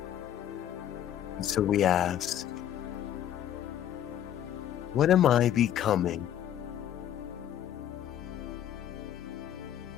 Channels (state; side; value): quieter; right; 10.8 dB